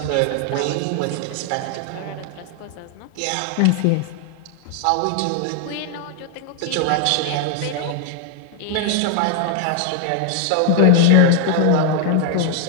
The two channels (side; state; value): both; different; correlation 0.00